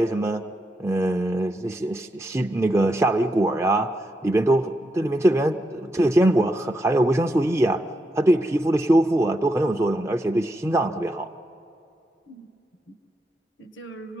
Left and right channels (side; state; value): both; normal; correlation 0.83